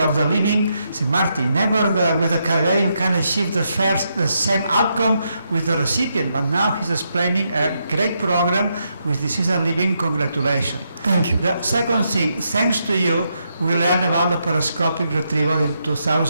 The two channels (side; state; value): both; inverted; correlation -0.80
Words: the living. Say, Marty, never with a career you can achieve the same outcome with the recipient. But now he's explaining a great program with Deceased and Living. Congratulations. Thank you. The second thing, thanks to you, we learned about the laparoscopic retrieval in